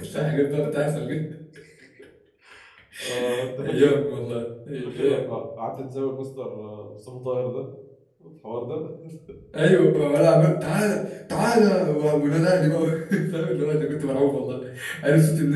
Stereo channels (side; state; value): both; identical; correlation 1.00